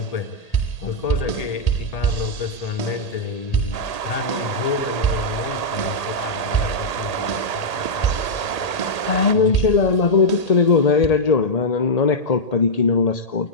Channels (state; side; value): late; right; 1.8 ms